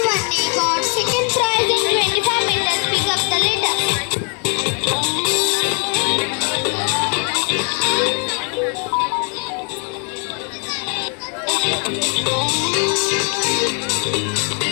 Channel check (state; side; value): quieter; right; 38.6 dB